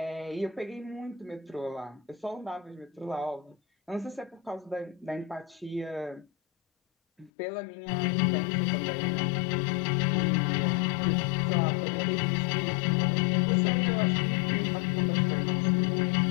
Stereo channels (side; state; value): right; drops out; at 7.3 s